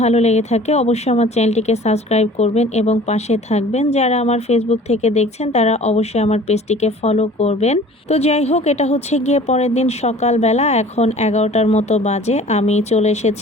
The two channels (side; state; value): both; normal; correlation 0.47